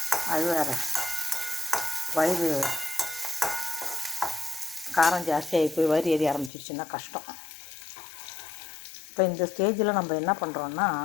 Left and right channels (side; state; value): right; drops out; at 6.5 s